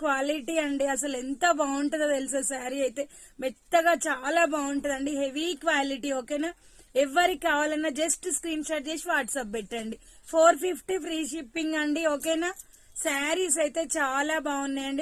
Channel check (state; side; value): identical; both; correlation 1.00